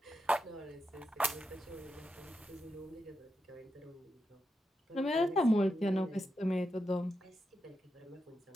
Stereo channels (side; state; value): both; normal; correlation 0.86